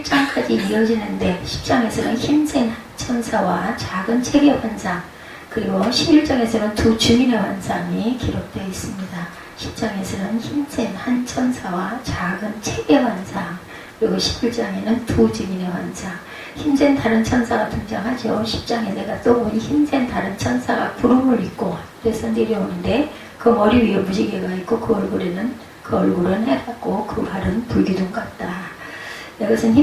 이어지는데 10장에서는 힘센 천사와 작은 체계 환상, 그리고 11장에서는 두 증인의 환상이 기록되어 있습니다. 10장에서는 힘센 한 천사와 작은 체계 환상, 그리고 11장에는 두 증인의 환상. 힘센 다른 천사가 등장하죠. 10장에 내가 또 보니 힘센 다른 천사가 구름을 입고 하늘에서 내려오는데 그 머리 위에 무지개가 있고 그 얼굴은 해같고 그 발은 불기둥 같다. 이것은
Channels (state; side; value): identical; both; correlation 1.00